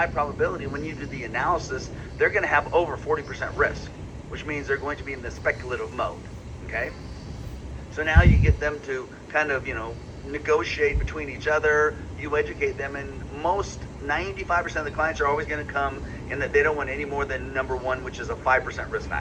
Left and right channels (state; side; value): identical; both; correlation 1.00